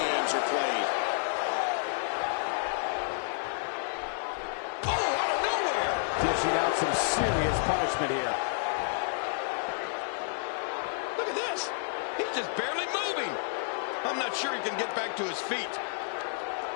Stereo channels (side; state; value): right; silent; 58 dB below the other